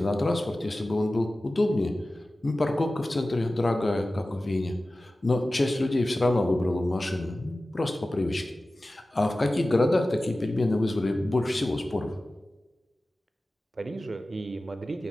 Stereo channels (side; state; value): both; normal; correlation 0.96